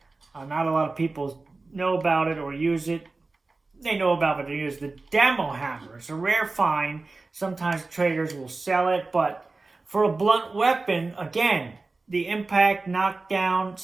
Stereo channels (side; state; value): left; quieter; 3.6 dB